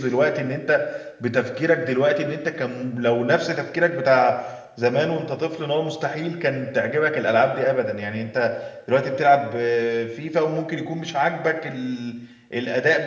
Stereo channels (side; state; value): both; identical; correlation 1.00